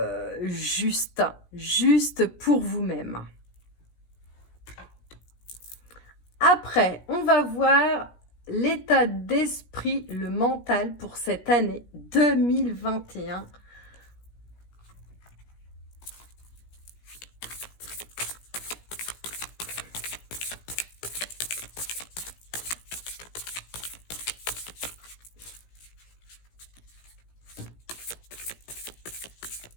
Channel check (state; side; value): late; right; 17 ms